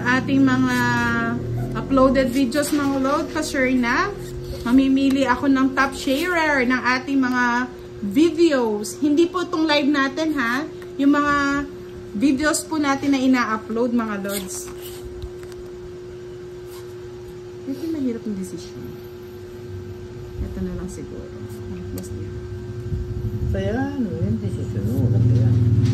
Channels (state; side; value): identical; both; correlation 1.00